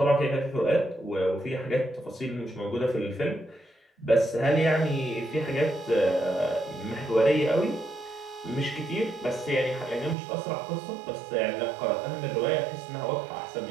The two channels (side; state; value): left; drops out; at 10.2 s